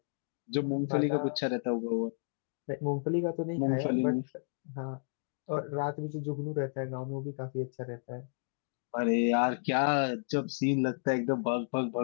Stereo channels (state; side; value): silent; right; digital silence